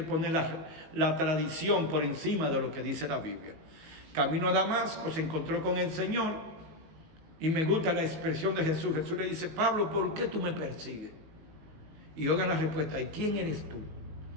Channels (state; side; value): late; left; 19 ms